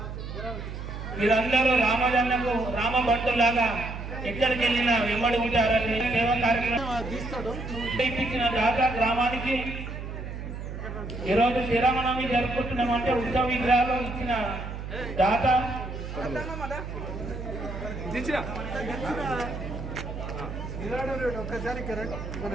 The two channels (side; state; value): right; noise; hum, 8 dB below the sound